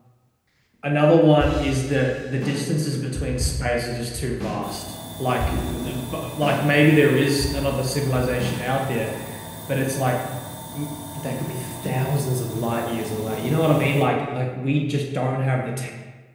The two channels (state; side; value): identical; both; correlation 1.00